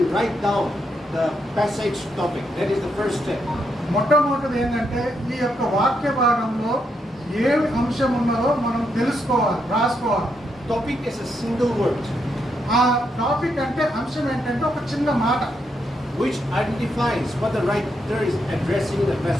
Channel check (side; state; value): both; normal; correlation 0.79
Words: write down the passage topic. That is the first step. మొట్టమొదటిది ఏంటంటే ఈ యొక్క వాక్య భాగంలో ఏ అంశం ఉన్నదో మనం తెలుసుకోవాలి, రాసుకోవాలి. Topic is a single word. ఆ టాపిక్ అంటే అంశం ఏంటంటే ఒక చిన్న మాట which identifies what the writer is addressing the